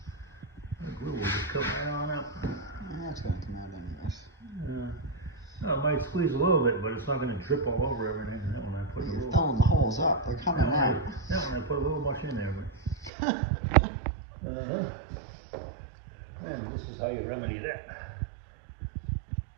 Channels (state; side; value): drops out; left; at 13.1 s